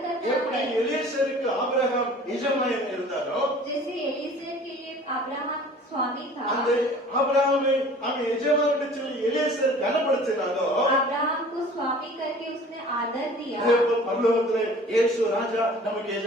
करना எப்படி है। எலியேசருக்கு ஆபிரகாம் எஜமான் இருந்தாரோ, जैसे एलीजेर के लिए अब्राहम स्वामी था, அந்த ஆபிரகாமை அவன் எஜமான் என்று சொல்லி எலியேசர் கனப்படுத்தினாரோ, अब्राहम को स्वामी करके उसने आदर दिया। அதே போல பரலோகத்திலே இயேசு ராஜா நமக்கு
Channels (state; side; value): normal; both; correlation 0.47